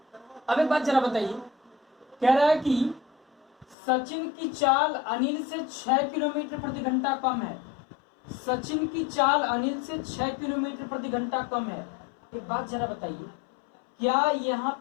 अब एक बात जरा बताइए, कह रहा है कि सचिन की चाल अनिल से 6 किलोमीटर प्रति घंटा कम है। सचिन की चाल अनिल से 6 किलोमीटर प्रति घंटा कम है। एक बात जरा बताइए, क्या यहाँ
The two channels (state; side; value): drops out; right; at 3.8 s